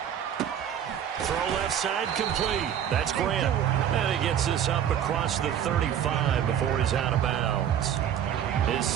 Throw left side complete. That's Grant. And he gets this up across the 35 before he's out of bounds. His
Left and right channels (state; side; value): quieter; left; 9.6 dB